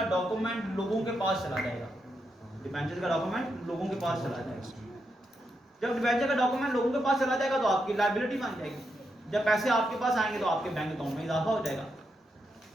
डॉक्यूमेंट लोगों के पास चला जाएगा। डिबेंचर्स का डॉक्यूमेंट लोगों के पास चला जाएगा। जब डिबेंचर का डॉक्यूमेंट लोगों के पास चला जाएगा तो आपकी लायबिलिटी बन जाएगी। जब पैसे आपके पास आएंगे तो आपके बैंक अकाउंट में इजाफा हो जाएगा।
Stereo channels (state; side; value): normal; both; correlation 0.83